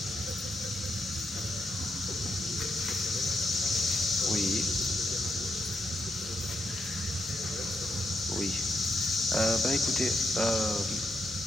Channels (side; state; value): both; normal; correlation 0.81